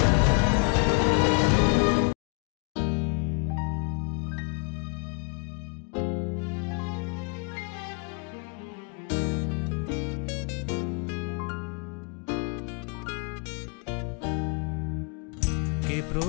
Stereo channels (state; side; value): quieter; right; 37.0 dB